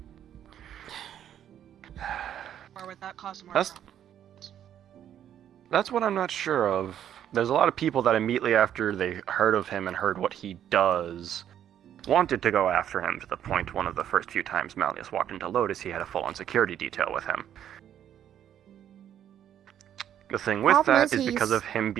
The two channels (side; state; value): left; quieter; 10.2 dB